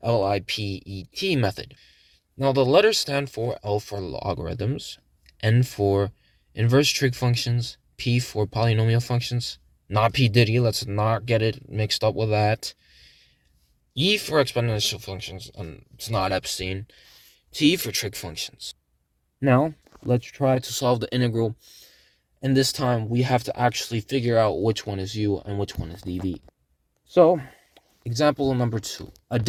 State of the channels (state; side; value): identical; both; correlation 1.00